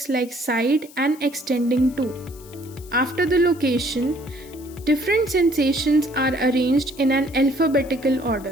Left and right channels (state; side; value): noise; left; hiss, 22 dB below the sound